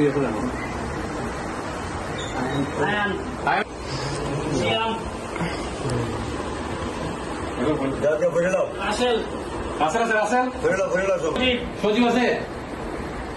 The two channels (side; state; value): both; identical; correlation 1.00